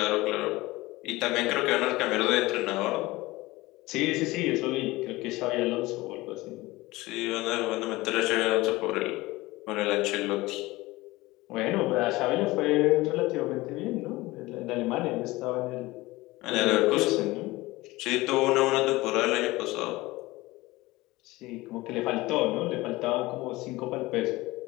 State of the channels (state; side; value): quieter; right; 20.1 dB